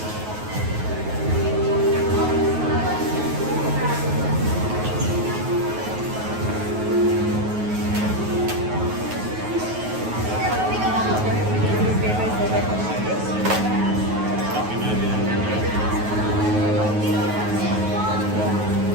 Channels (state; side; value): late; left; 9.4 ms